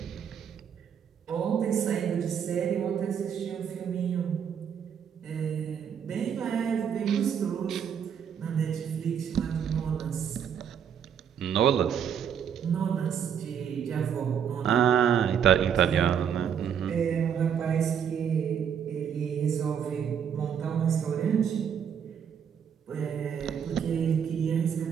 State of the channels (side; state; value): left; quieter; 8.0 dB